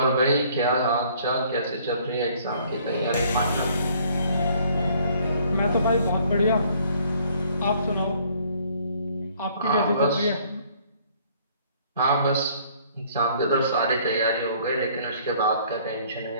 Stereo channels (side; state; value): both; inverted; correlation -0.60